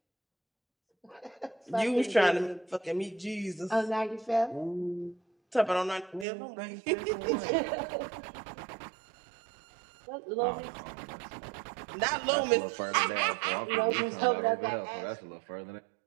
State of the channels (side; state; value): left; drops out; at 6.2 s